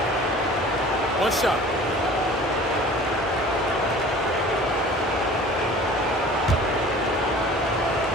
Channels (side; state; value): both; normal; correlation 0.45